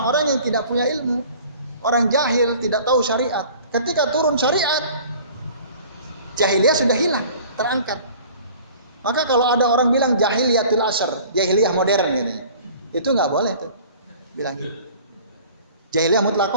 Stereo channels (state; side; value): inverted; both; correlation -0.48